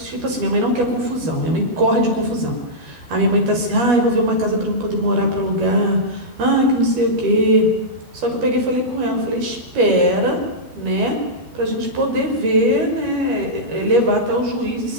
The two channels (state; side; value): late; left; 12 ms